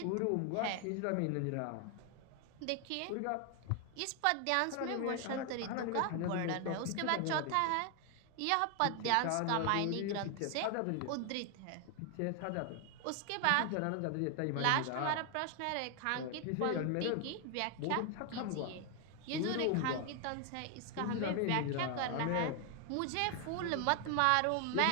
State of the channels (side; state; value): both; different; correlation 0.00